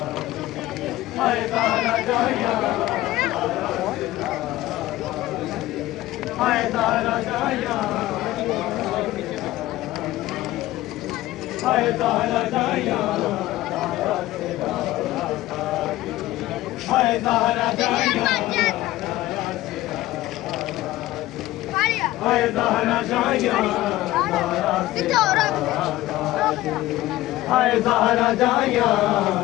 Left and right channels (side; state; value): right; quieter; 16.4 dB